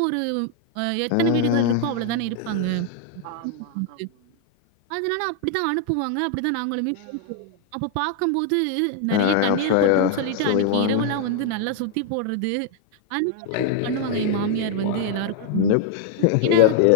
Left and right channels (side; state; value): both; different; correlation 0.00